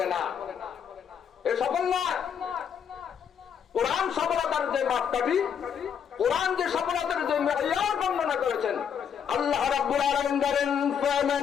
না, এ সফল না। কোরআন সফলতার যে মাপকাঠি, কোরআন যে সফলতার যে মেয়ার বর্ণনা করেছেন, আল্লাহ রাব্বুল আলামিন বলেন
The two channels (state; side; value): quieter; right; 7.8 dB